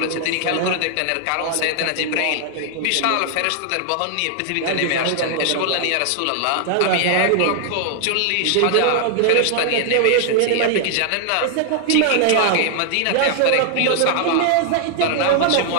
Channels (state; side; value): different; both; correlation 0.00